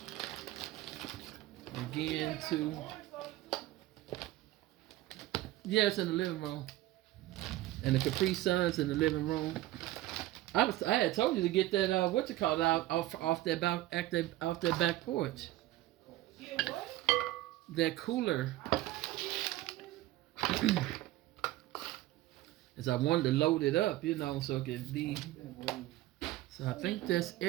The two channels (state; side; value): quieter; left; 16.2 dB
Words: again to, yeah, it's in the living room. And the Capri Sun's in the living room. I had told you to get that out off that back porch. Get what? That cooler. As I wanted to load it up, so it could be. So I think that's